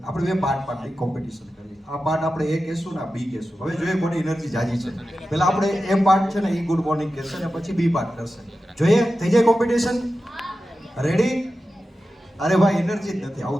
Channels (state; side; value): normal; both; correlation 0.93